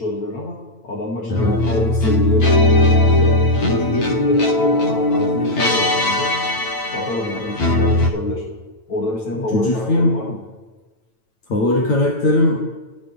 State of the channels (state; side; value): late; right; 9.0 ms